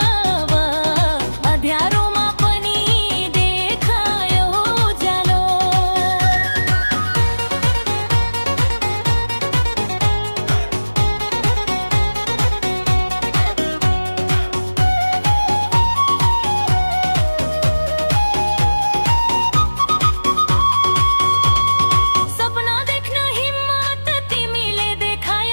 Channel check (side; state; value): both; inverted; correlation -1.00